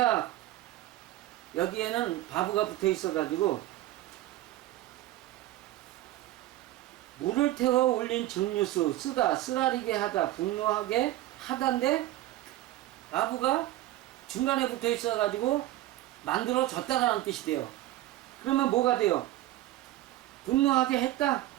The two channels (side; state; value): left; quieter; 15.3 dB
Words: 여기에는 바브가 붙어 있어가지고, 물을 태워 올린 증류수, 쓰라리게 하다, 분노하게 하다인데, 바브가 중간에 붙어 있어가지고, 만들어졌다라는 뜻이 돼요. 그러면 뭐가 돼요? 분노하게 했다,